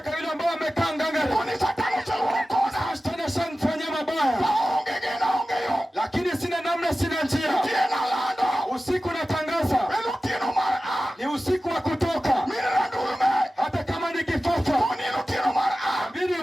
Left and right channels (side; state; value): both; normal; correlation 0.95